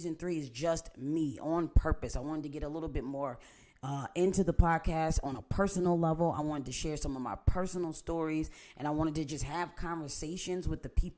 3 is just me on purpose. I wanted to get a little bit more into the podcast on a personal level. I wanted to share some of my personal stories, and I wanted to just have conversations with the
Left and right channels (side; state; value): both; identical; correlation 1.00